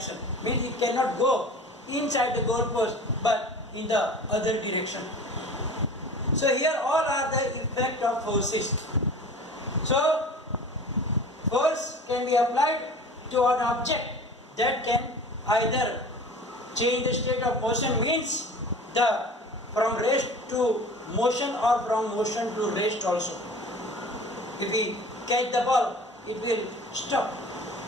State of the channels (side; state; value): both; normal; correlation 0.40